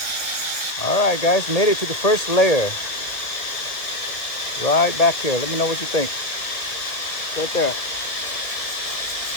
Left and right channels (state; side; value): late; right; 2.0 ms